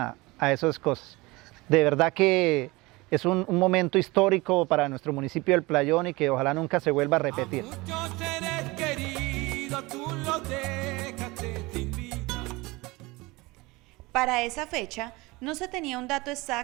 esas cosas. De verdad que es un momento histórico para nuestro municipio del Playón y que ojalá nunca se vuelva a repetir. A muchos seres queridos tú los dejaste sin vida. Para esa fecha no se tenía un dato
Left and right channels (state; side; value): quieter; left; 22.8 dB